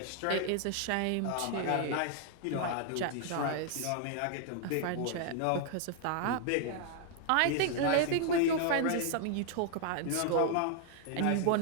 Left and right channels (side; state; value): both; different; correlation 0.00